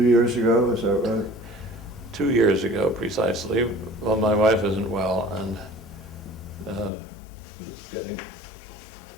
years ago, is that right? 2 years ago, precisely. Well, my wife isn't well and was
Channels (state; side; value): drops out; right; at 6.9 s